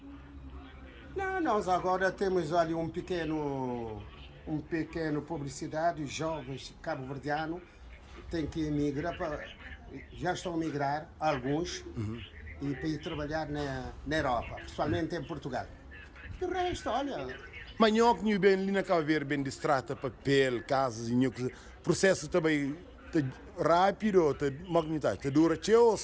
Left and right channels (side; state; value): both; identical; correlation 1.00